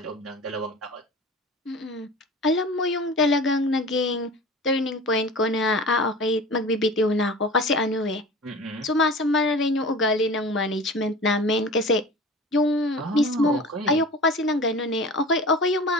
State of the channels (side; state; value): both; normal; correlation 0.38